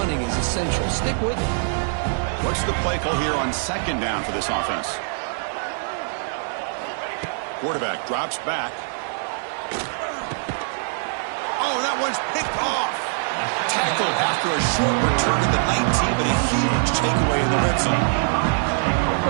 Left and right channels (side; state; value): left; silent; digital silence